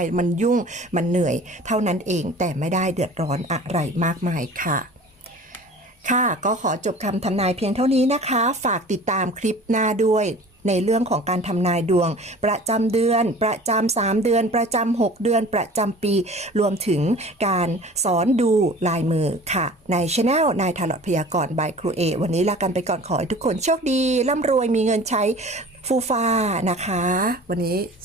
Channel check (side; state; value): both; normal; correlation 0.43